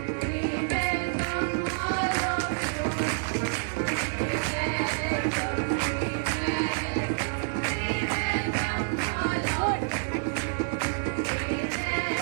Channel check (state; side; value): silent; left; digital silence